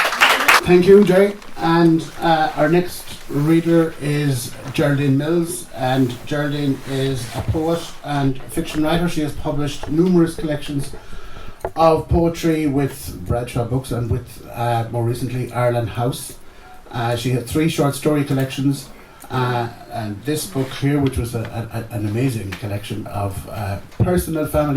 Thank you, Jerry. And our next reader is Geraldine Mills, and Geraldine is a poet and fiction writer. She has published numerous collections of poetry with Bradshaw Books and with, more recently, Ireland House. She had 3 short story collections, and this book here, which was an amazing collection of personal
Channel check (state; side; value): identical; both; correlation 1.00